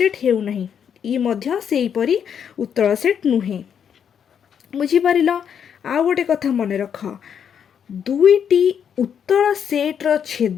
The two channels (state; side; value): quieter; right; 8.0 dB